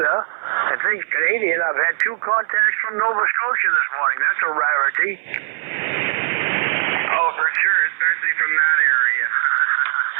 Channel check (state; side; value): silent; left; 59 dB below the other